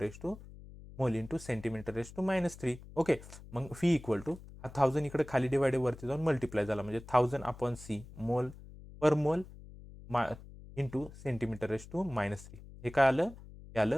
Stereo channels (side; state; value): left; noise; hum, 17 dB below the sound